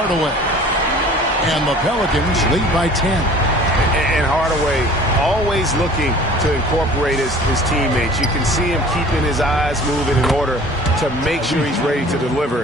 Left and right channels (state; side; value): normal; both; correlation 0.47